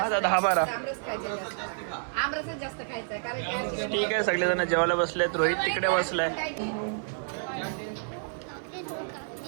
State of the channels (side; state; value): left; silent; digital silence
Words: जास्त 10-12. आमरस खायचं जास्त. आमरसच जास्त खायचं आहे कारण की आज- ठीक आहे, सगळेजण जेवायला बसलेत. रोहित तिकडे बसलाय. काय